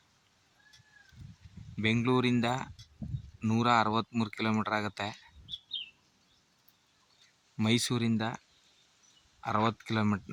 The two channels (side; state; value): both; identical; correlation 1.00